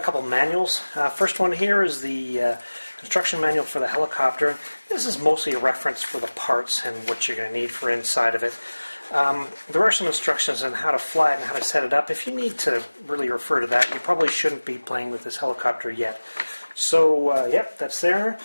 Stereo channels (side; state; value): both; inverted; correlation -1.00